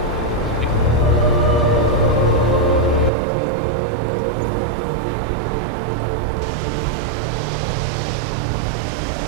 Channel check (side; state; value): left; drops out; at 3.1 s